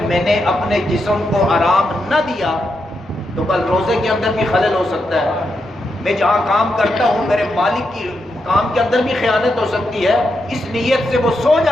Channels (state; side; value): noise; right; hum, 27 dB below the sound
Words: میں نے اپنے جسم کو آرام نہ دیا تو کل روزے کے اندر بھی خلل ہو سکتا ہے. میں جہاں کام کرتا ہوں میرے مالک کی کام کے اندر بھی خیانت ہو سکتی ہے. اس نیت سے وہ سو